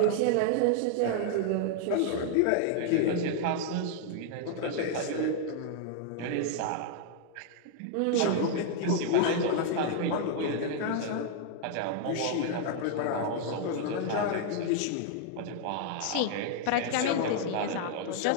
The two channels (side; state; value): both; different; correlation 0.00